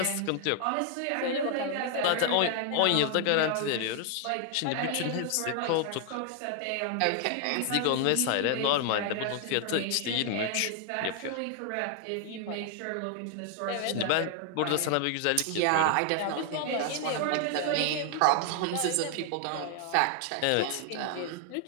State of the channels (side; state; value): both; different; correlation 0.00